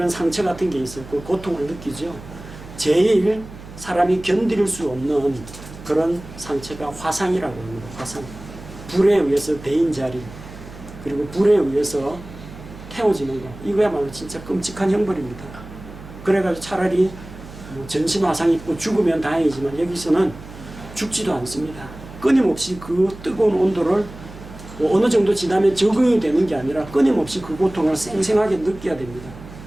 상처 같은 게 있었고 고통을 느끼죠. 제일 사람이 견딜 수 없는 그런 상처가 화상이라고 합니다. 화상. 불에 의해서 데인 자리, 그리고 불에 의해서 태워지는 거. 이거야말로 진짜 끔찍한 형벌입니다. 그래가지고 차라리 뭐 전신 화상 입고 죽으면 다행이지만 여기서는 죽지도 않습니다. 끊임없이 그 뜨거운 온도를 뭐 어느 정도 지나면 적응이 되는 게 아니라 끊임없이 그 고통을 생생하게 느껴야 됩니다.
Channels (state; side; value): noise; right; hum, 16 dB below the sound